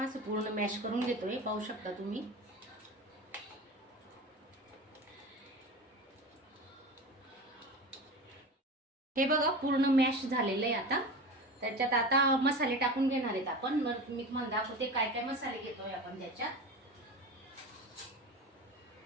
असं पूर्ण मॅश करून घेतोय, पाहू शकता तुम्ही. हे बघा, पूर्ण मॅश झालेलं आहे. आता त्याच्यात आता मसाले टाकून घेणार आहेत आपण. मी तुम्हाला दाखवते काय काय मसाले घेतोय आपण. त्याच्यात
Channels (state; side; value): normal; both; correlation 0.30